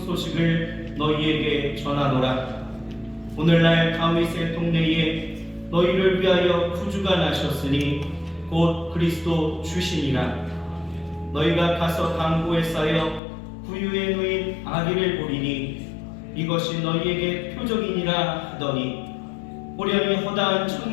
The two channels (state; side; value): drops out; right; at 13.2 s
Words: 소식을 너희에게 전하노라. 오늘날 다윗의 동네에 너희를 위하여 구주가 나셨으니 곧 그리스도 주시니라. 너희가 가서 강고에 쌓여 부유에 누인 아기를 보리니 이것이 너희에게 표적이니라 하더니 호련히 허다한